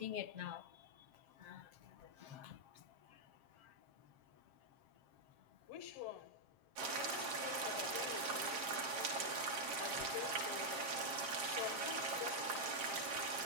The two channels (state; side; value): late; left; 7.5 ms